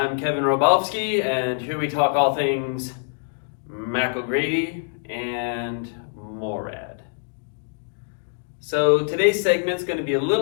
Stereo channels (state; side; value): silent; right; digital silence